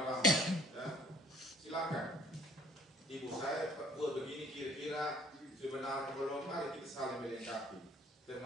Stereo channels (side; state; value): both; normal; correlation 0.56